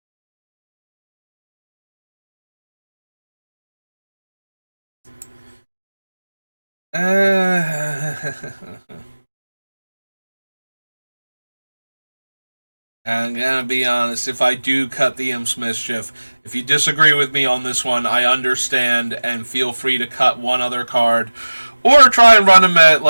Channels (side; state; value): both; inverted; correlation -1.00